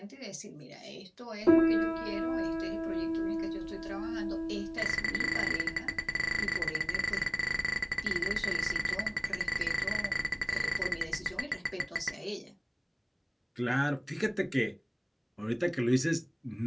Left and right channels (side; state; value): both; identical; correlation 1.00